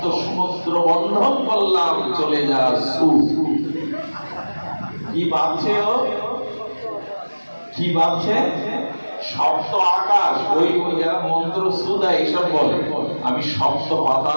সমুদ্র বন্ধন করলাম, চলে যা সু। কি বাঁধছে ও? কি বাঁধছে? সপ্ত আকাশ। ওই যারা মন্ত্র সু দেয় এইসব বলে, আমি সপ্ত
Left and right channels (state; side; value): inverted; both; correlation -1.00